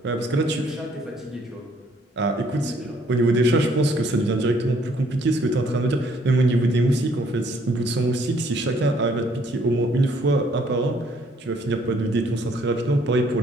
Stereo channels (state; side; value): normal; both; correlation 0.64